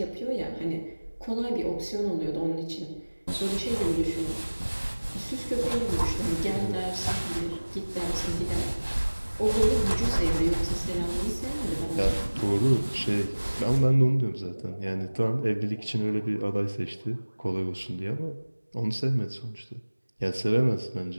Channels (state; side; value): inverted; both; correlation -1.00